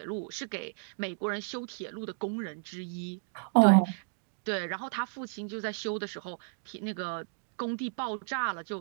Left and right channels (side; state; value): left; silent; digital silence